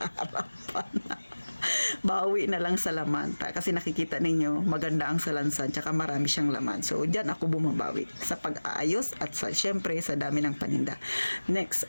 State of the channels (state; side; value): inverted; both; correlation -1.00